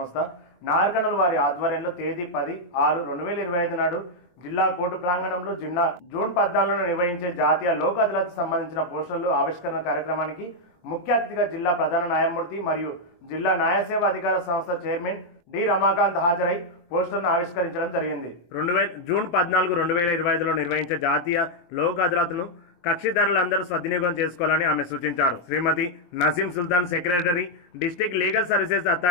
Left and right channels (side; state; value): right; late; 23 ms